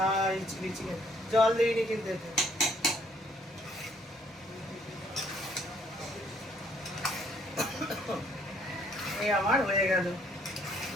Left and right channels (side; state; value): both; normal; correlation 0.65